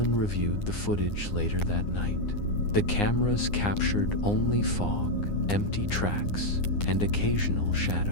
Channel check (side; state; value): right; late; 9.8 ms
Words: reviewed the footage later that night. The cameras captured only fog, empty tracks, and occasional